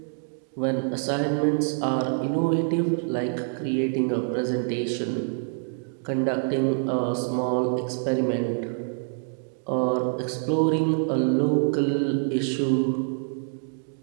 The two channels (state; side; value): silent; left; digital silence